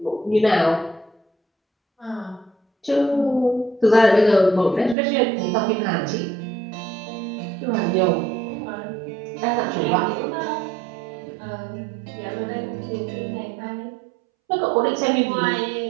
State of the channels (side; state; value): left; drops out; at 5.0 s